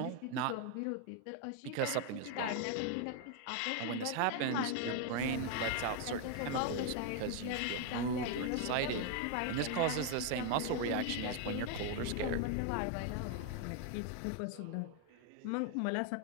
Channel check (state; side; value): different; both; correlation 0.01